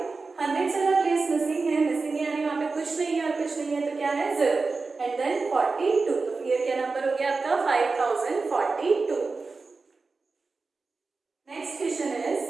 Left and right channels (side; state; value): left; quieter; 4.1 dB